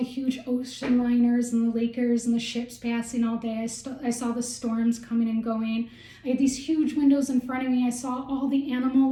huge ocean liners and the Lakers and the ships passing all day. I saw the storms coming and going. I had these huge windows in front of me. I saw all the animal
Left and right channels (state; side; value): identical; both; correlation 1.00